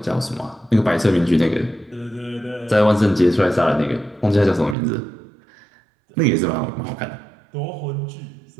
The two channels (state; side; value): drops out; left; at 4.8 s